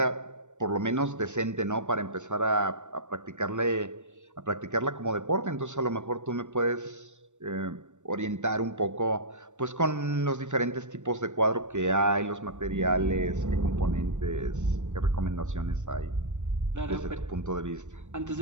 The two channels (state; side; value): late; left; 0.84 ms